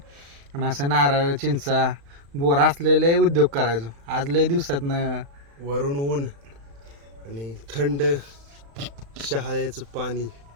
आणि असं नारळ चिंचा बोर असलेले उद्योग करायचो. आज लय दिवसातनं वरून ऊन आणि थंड शहाळ्याचं पाणी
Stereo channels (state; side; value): late; left; 35 ms